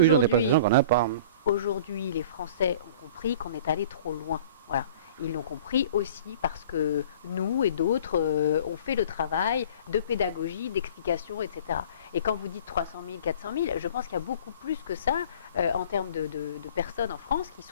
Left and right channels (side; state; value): both; inverted; correlation -0.46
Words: des prestations qu'on n'a pas. Aujourd'hui, les Français ont compris qu'on est allé trop loin. Voilà. Ils l'ont compris aussi parce que nous et d'autres ont fait le travail de pédagogie, d'explication, etc. Et quand vous dites 300 000, 400 000, je pense qu'il y a beaucoup plus que ça en termes de personnes en France qui